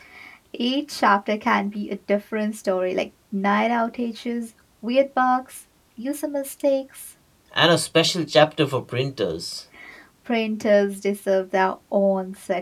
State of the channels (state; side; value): identical; both; correlation 1.00